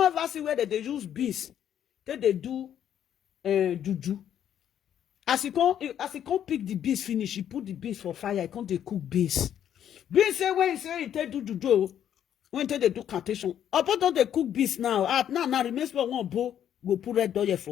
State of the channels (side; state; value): right; quieter; 10.0 dB